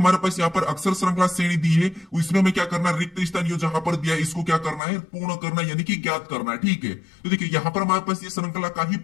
पास यहाँ पर अक्षर श्रृंखला श्रेणी दी है, इसमें हमें क्या करना है, रिक्त स्थान जो जहां पर दिया है इसको क्या करना है, पूर्ण करना, यानी कि ज्ञात करना है, ठीक है। तो देखिए यहाँ पर हमारे पास ये श्रृंखला का ही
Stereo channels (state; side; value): drops out; right; at 4.8 s